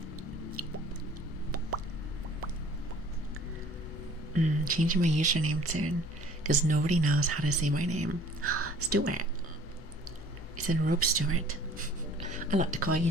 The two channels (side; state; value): both; normal; correlation 0.50